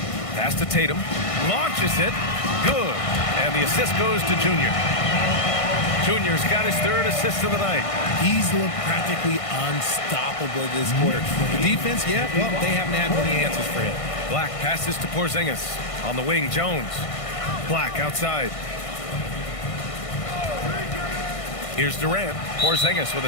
Pass to Tatum. Launches it. Good. And the assist goes to Junior. Junior's got his 3rd assist of the night. He's looked practically unstoppable this quarter. The defense, yeah, well, they haven't had many answers for him. Black passes to Porzingis. On the wing, Jones. Black outside. Here's Durant. Porzingis with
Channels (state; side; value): late; right; 1.6 ms